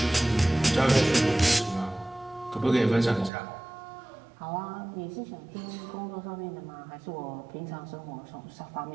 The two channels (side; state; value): left; drops out; at 3.3 s